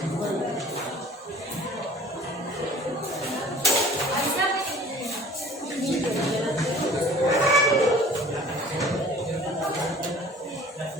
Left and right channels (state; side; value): normal; both; correlation 0.48